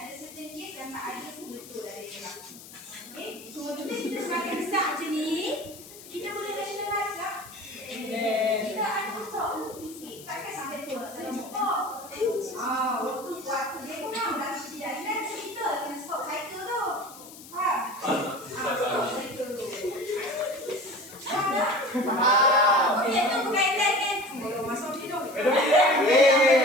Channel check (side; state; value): left; noise; hiss, 17 dB below the sound